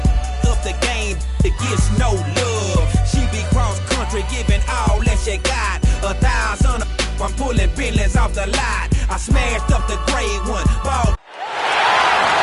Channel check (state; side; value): identical; both; correlation 1.00